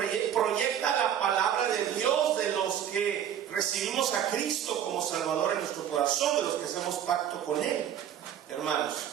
proyecta la palabra de Dios de los que recibimos a Cristo como Salvador en nuestro corazón, de los que hacemos pacto con Él, hermanos.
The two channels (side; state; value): left; quieter; 9.7 dB